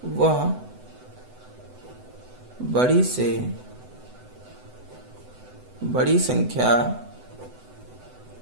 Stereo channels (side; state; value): left; late; 8.0 ms